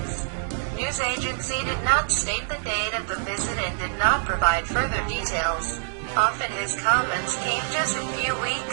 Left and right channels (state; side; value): silent; left; digital silence